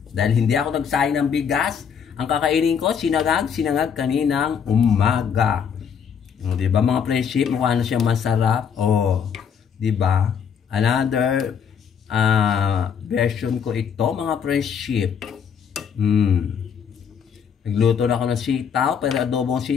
Dahil hindi ako nagsayang ng bigas, ang kakainin ko, sinangag kaninang umaga. O, diba mga friendship, mukha na siyang masarap. O, diba? Another version ko ito, mga friendship. Nagluto na ako ng sitaw, pero adobong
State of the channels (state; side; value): quieter; right; 7.3 dB